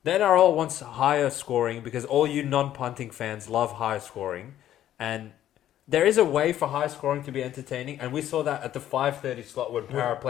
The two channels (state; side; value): quieter; right; 12.0 dB